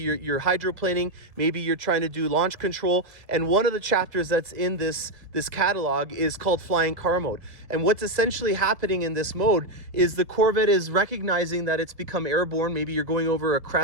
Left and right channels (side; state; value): left; late; 1.7 ms